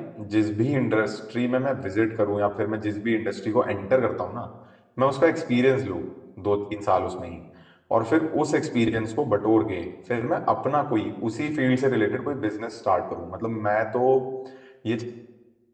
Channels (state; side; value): identical; both; correlation 1.00